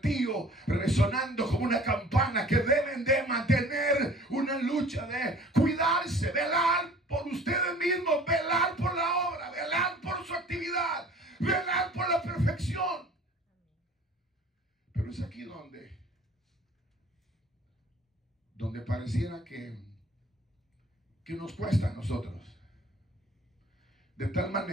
resonando como una campana, que deben de mantener una lucha de cuidarse, velar por ustedes mismos, velar por la obra, velar por su actividad, velar por la perfección. Pero es aquí donde pareciera que nos cuesta a nosotros. De tal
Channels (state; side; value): normal; both; correlation 0.48